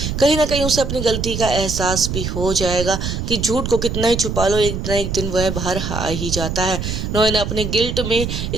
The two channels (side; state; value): right; noise; rumble, 4 dB below the sound